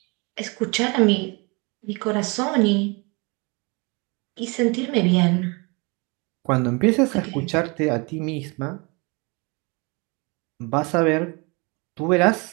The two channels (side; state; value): left; quieter; 29.3 dB